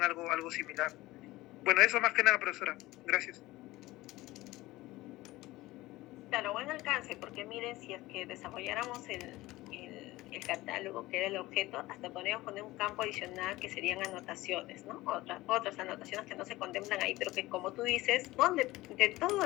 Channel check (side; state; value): right; quieter; 18.5 dB